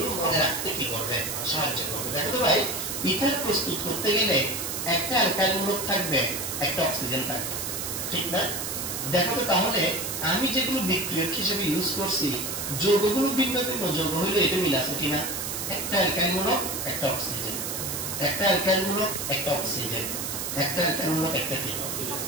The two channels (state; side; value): noise; right; hiss, 4 dB below the sound